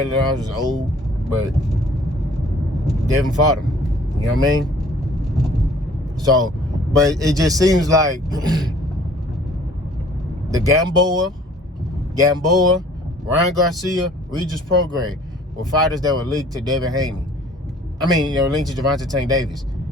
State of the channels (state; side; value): normal; both; correlation 0.54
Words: Linares was old, but Devin fought him. You know what I mean? So, but it just seems like the Gamboa, Ryan Garcia, Regis Prograis were fighters that were linked to Devin Haney. I mean, linked to Gervonta Tank Davis.